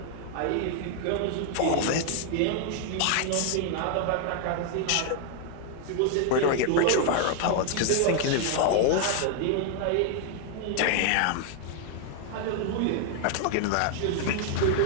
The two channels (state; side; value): different; both; correlation 0.00